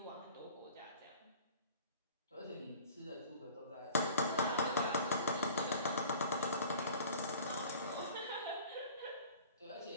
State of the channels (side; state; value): both; inverted; correlation -0.46